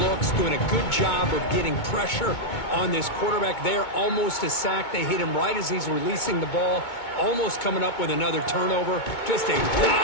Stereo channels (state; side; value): late; right; 2.2 ms